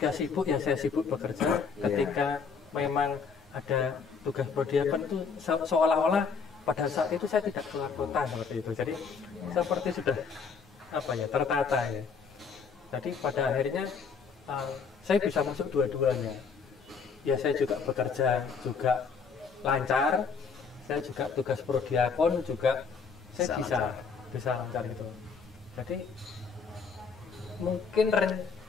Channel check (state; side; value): quieter; right; 5.6 dB